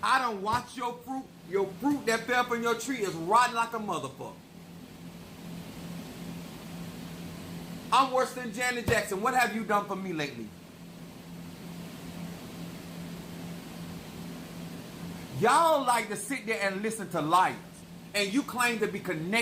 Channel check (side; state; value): both; identical; correlation 1.00